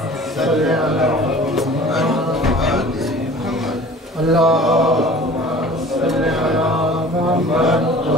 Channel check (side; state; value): both; normal; correlation 0.45